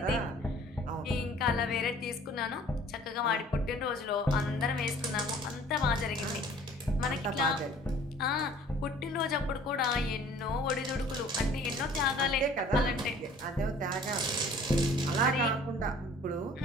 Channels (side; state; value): both; normal; correlation 0.51